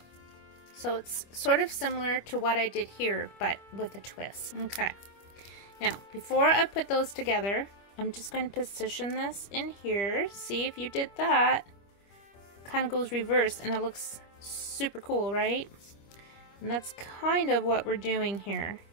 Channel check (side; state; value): right; late; 25 ms